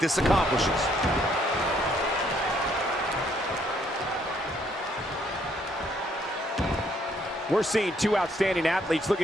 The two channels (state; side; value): normal; both; correlation 0.68